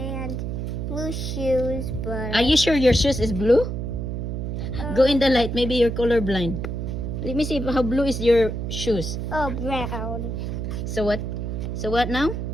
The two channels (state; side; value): noise; right; hum, 3 dB below the sound